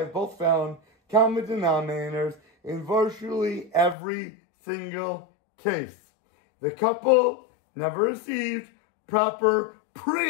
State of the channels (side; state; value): right; drops out; at 4.0 s